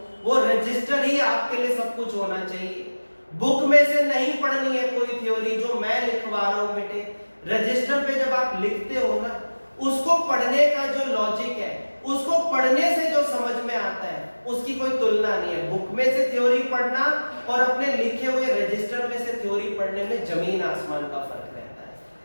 वो रजिस्टर ही आपके लिए सब कुछ होना चाहिए। बुक में से नहीं पढ़नी है कोई थ्योरी, जो मैं लिखवा रहा हूं बेटे रजिस्टर पे जब आप लिखते हो ना, उसको पढ़ने का जो लॉजिक है, उसको पढ़ने से जो समझ में आता है उसकी कोई तुलना नहीं है। बुक में से थ्योरी पढ़ना और अपने लिखे हुए रजिस्टर में से थ्योरी पढ़ने में जमीन आसमान का फर्क रहता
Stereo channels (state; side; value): inverted; both; correlation -1.00